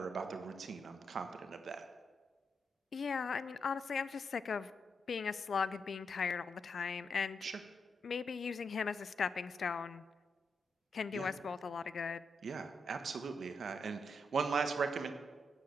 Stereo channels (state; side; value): normal; both; correlation 0.82